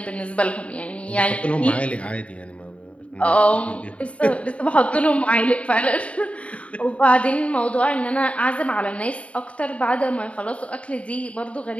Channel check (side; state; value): right; late; 0.064 ms